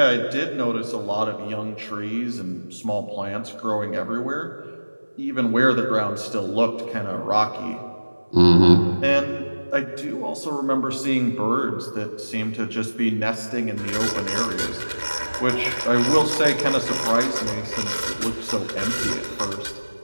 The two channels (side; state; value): both; inverted; correlation -1.00